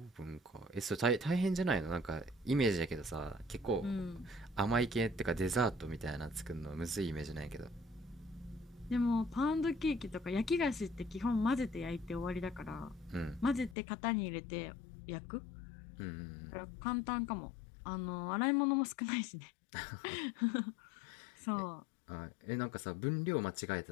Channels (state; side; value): drops out; right; at 13.8 s